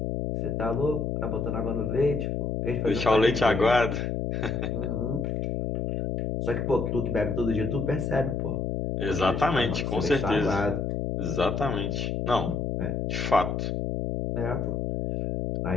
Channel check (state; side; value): noise; left; hum, 1 dB below the sound